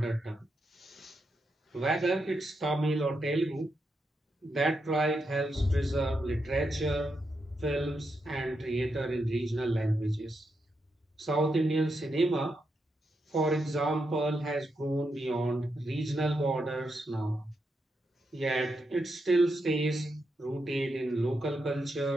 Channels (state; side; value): normal; both; correlation 0.84